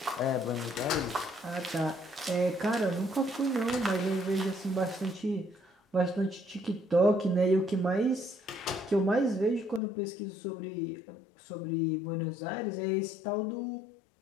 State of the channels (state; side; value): drops out; right; at 9.8 s